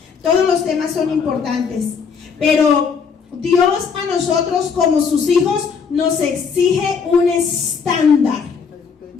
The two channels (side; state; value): right; quieter; 5.9 dB